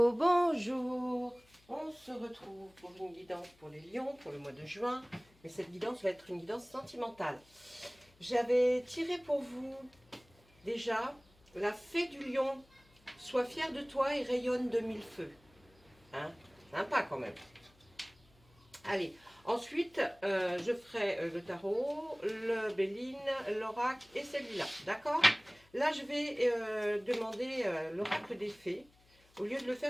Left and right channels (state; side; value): noise; left; hum, 30 dB below the sound